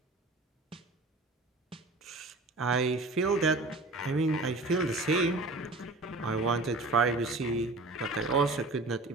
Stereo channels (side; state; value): left; quieter; 3.0 dB